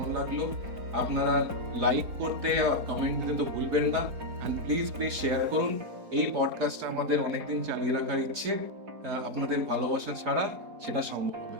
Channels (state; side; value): late; left; 4.9 ms